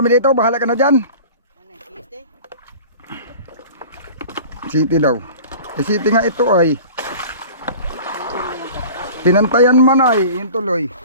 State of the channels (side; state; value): both; inverted; correlation -0.41